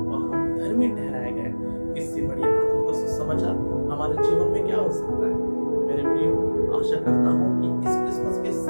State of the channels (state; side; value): inverted; both; correlation -1.00